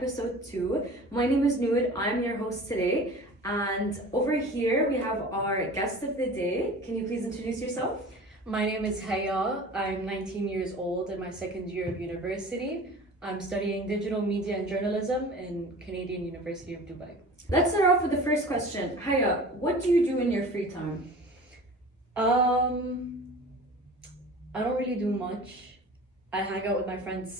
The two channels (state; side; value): normal; both; correlation 0.40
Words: 2. My name is Noor, I'm your host today, and over here we have our guest of the day. Can you please introduce yourself? My name is Haya. I'm 19 years old in my second year of university. I'm studying digital media and journalism in Canadian University of Dubai. Let's start off with the first question. Haya, what do you do in your free time? I don't really do much. I hang out with my friends